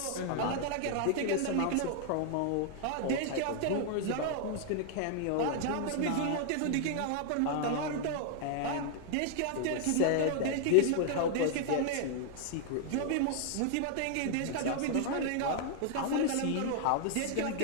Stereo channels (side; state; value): both; different; correlation 0.00